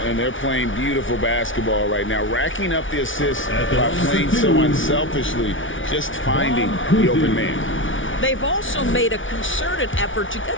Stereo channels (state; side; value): late; right; 0.57 ms